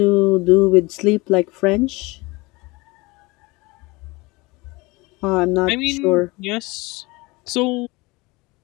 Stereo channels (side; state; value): right; quieter; 23.7 dB